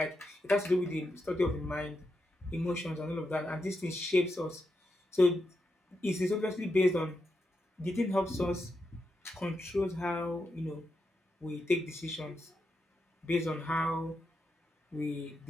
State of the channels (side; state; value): both; normal; correlation 0.85